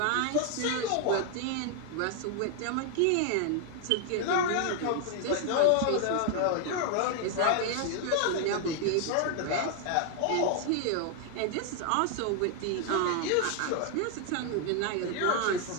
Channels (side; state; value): both; different; correlation 0.00